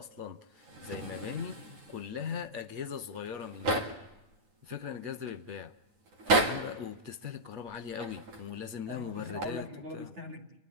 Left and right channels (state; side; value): late; left; 9.7 ms